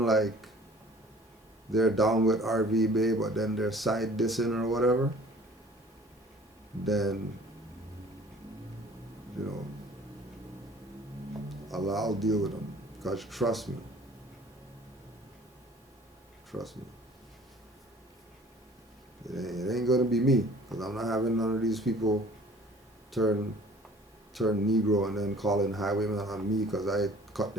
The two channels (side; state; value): both; normal; correlation 0.51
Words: like they're down with RV Bay, but then they're side dissing or whatever, then, you know, I'll deal with them. Because trust me. Trust me. It ain't gonna be me. Because I'm not having none of these people turn Negro and then calling highwaymen on me because I cut